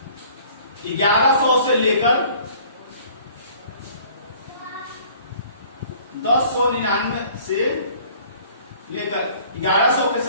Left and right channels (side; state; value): both; inverted; correlation -0.53